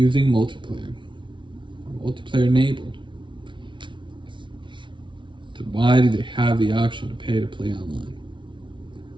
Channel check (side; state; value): left; late; 0.24 ms